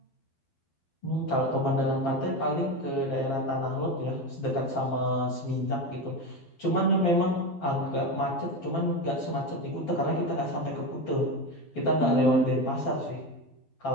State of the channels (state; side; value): late; right; 12 ms